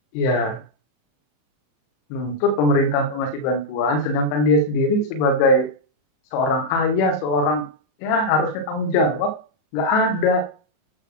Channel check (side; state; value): right; late; 35 ms